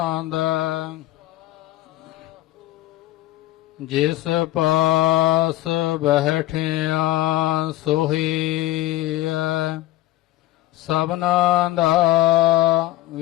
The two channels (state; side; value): quieter; right; 15.9 dB